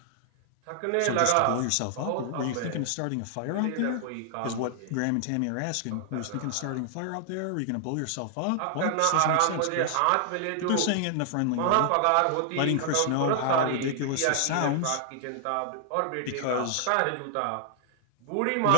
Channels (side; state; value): both; different; correlation 0.00